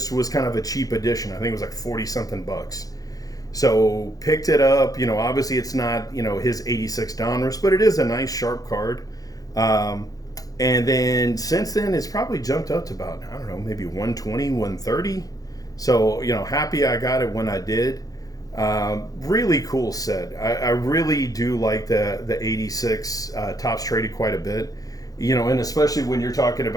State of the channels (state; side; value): late; right; 0.17 ms